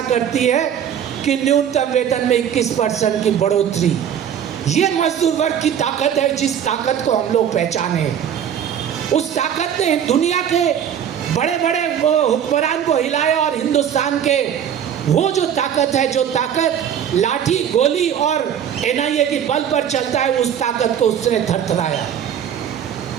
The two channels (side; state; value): left; quieter; 9.1 dB